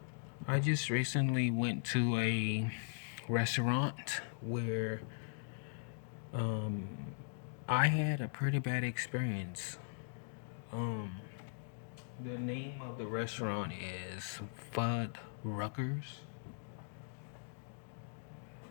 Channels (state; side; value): silent; right; digital silence